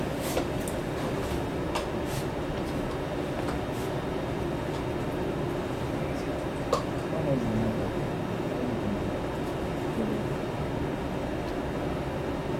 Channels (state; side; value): identical; both; correlation 1.00